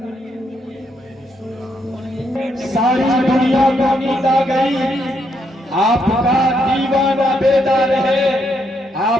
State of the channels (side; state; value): both; normal; correlation 0.76